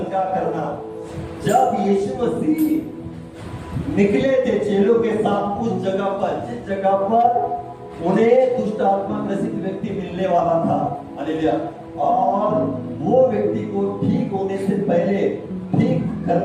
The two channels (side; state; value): both; identical; correlation 1.00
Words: करना। जब यीशु मसीह निकले थे चेलों के साथ उस जगह पर, जिस जगह पर उन्हें दुष्ट आत्मा ग्रसित व्यक्ति मिलने वाला था, हालेलुया, और वो व्यक्ति को ठीक होने से पहले, ठीक